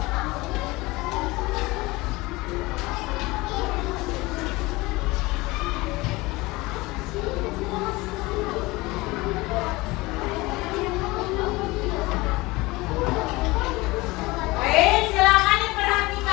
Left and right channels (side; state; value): right; quieter; 21.8 dB